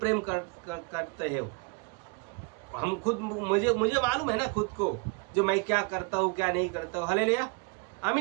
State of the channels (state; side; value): quieter; left; 31.0 dB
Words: प्रेम करते हो। हम खुद मुझे मालूम है ना खुद को, जो मैं क्या करता हूँ क्या नहीं करता हूँ। हालेलुया।